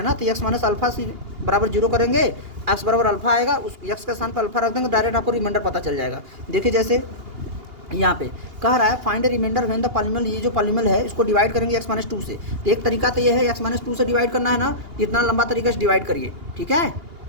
ना तो एक्स माइनस अल्फा से बराबर 0 करेंगे, एक्स बराबर अल्फा आएगा, उस एक्स के स्थान पर अल्फा रख देंगे, डायरेक्ट आपको रिमाइंडर पता चल जाएगा। देखिए जैसे यहाँ पे कह रहा है find remainder when the polynomial, ये जो पॉलीनोमियल है इसको डिवाइड करेंगे x-2 से। तो एक तरीका तो ये है x-2 से डिवाइड करना है ना, इतना लंबा तरीके से डिवाइड करिए। ठीक है,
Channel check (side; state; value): left; late; 2.8 ms